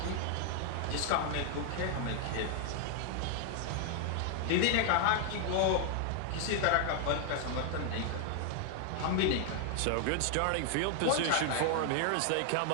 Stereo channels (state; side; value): different; both; correlation 0.00